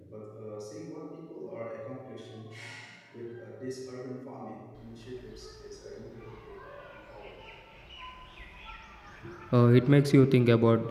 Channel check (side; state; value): both; identical; correlation 1.00